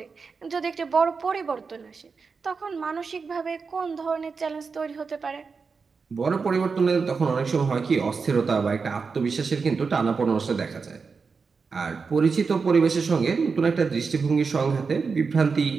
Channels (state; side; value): quieter; left; 5.0 dB